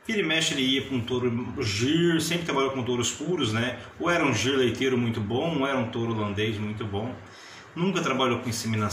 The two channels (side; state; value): both; identical; correlation 1.00